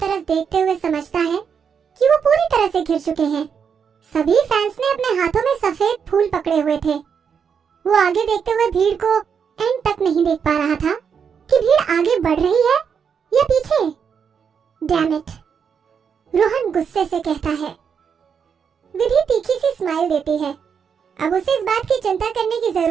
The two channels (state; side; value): quieter; left; 6.9 dB